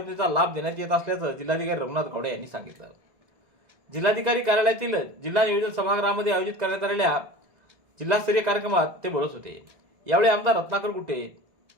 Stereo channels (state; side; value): late; left; 2.0 ms